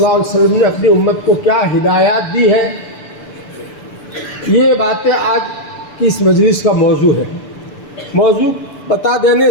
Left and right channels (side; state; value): right; late; 6.9 ms